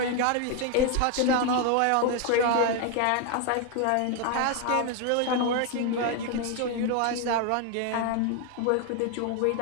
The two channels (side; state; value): both; different; correlation 0.01